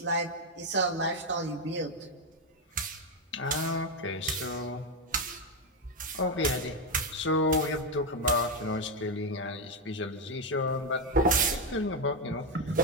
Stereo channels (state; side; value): normal; both; correlation 0.06